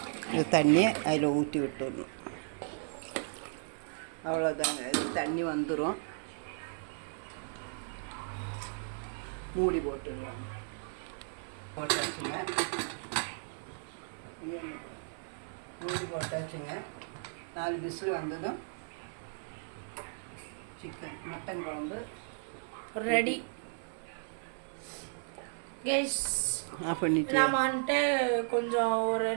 இந்த தண்ணியை அதில் ஊற்றி விட்டுடணும். அவ்வளோதாங்க. இது தண்ணி வந்துடும். மூடி போட்டுடலாம். போட்டாச்சுங்க. மூடி போட்டாச்சுங்க. 4 விசில் வந்ததும் மட்டன் குழம்பு ரெடி. கைஸ் நம்ம வந்துட்டு கொஞ்சம் ஒரு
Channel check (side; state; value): left; silent; 55 dB below the other